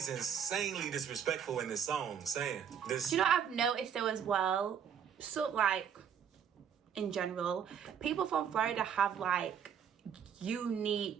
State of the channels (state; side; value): quieter; left; 8.1 dB